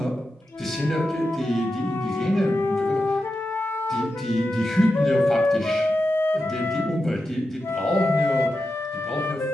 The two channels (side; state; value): both; normal; correlation 0.89